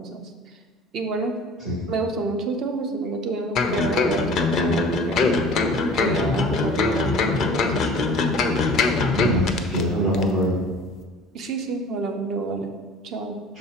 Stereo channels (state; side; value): normal; both; correlation 0.45